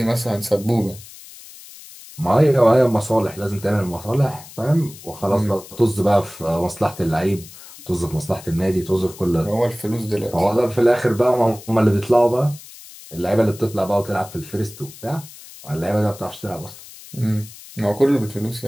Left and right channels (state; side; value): noise; left; hiss, 18 dB below the sound